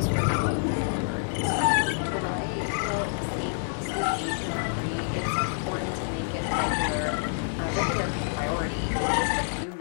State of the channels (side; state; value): right; silent; digital silence